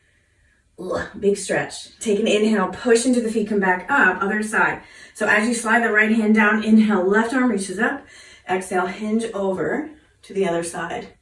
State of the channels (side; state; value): both; identical; correlation 1.00